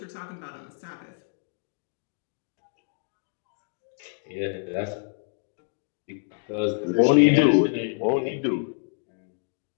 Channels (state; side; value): silent; right; digital silence